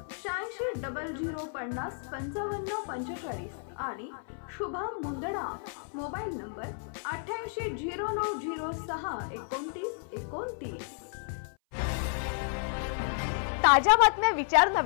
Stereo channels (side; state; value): right; silent; 57 dB below the other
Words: 8600505545 आणि शुभम मुंदडा। Mobile number 8809062929। ताज्या बातम्या विचार